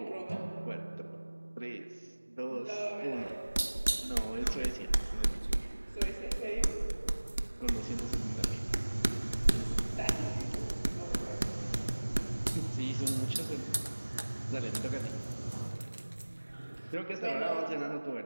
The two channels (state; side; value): inverted; both; correlation -1.00